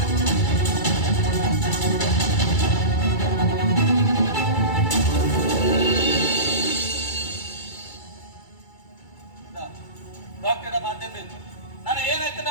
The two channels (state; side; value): late; right; 2.3 ms